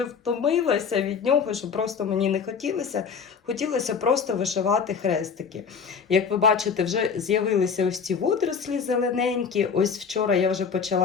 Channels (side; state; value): right; quieter; 6.2 dB